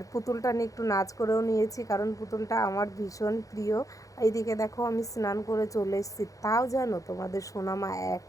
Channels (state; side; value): late; right; 0.16 ms